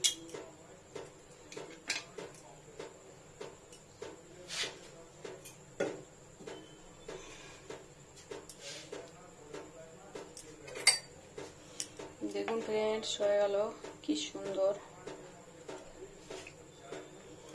দেখুন ফ্রেন্ডস, হয়ে গেল। কি সুন্দর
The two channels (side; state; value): both; identical; correlation 1.00